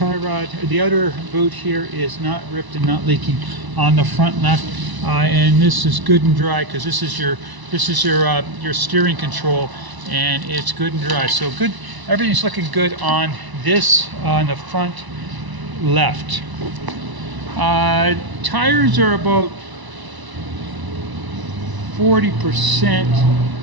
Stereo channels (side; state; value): left; late; 1.0 ms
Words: rod, the outer boot here is not ripped and not leaking on the front left, and this is good and dry because this is your steering control, and it's good and dry. So good, everything's looking good on this on the front left. Tires are about 40%